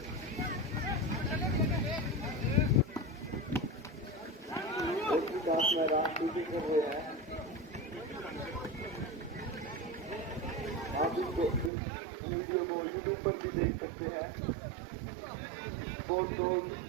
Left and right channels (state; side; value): drops out; left; at 11.7 s